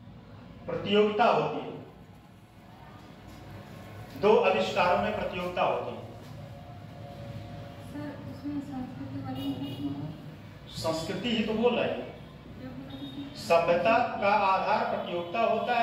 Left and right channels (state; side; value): identical; both; correlation 1.00